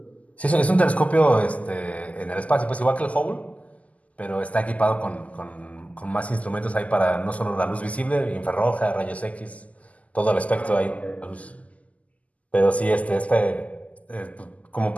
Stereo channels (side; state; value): right; late; 0.071 ms